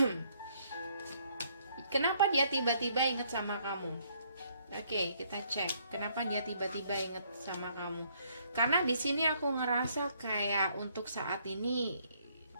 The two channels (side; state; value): both; inverted; correlation -0.67